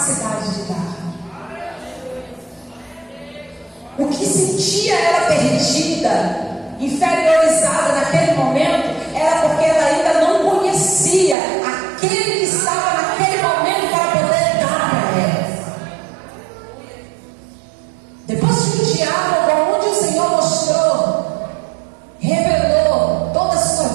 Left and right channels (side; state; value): left; drops out; at 11.4 s